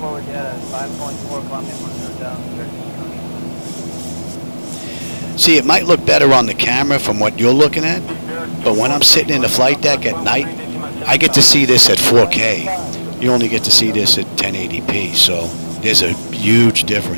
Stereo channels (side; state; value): both; inverted; correlation -1.00